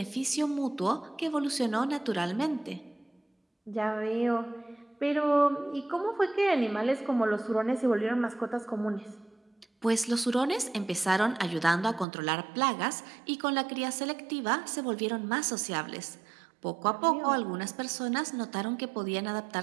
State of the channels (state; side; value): drops out; left; at 12.1 s